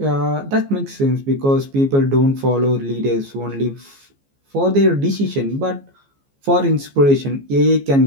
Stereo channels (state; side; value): late; left; 14 ms